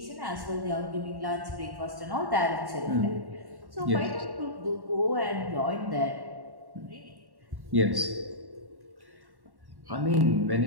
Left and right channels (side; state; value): left; late; 1.1 ms